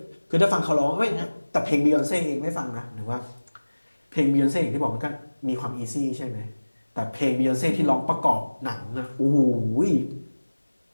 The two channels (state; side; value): inverted; both; correlation -1.00